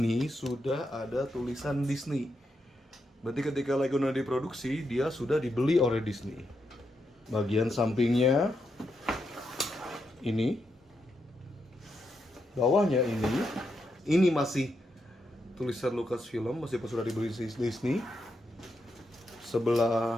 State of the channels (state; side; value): normal; both; correlation 0.83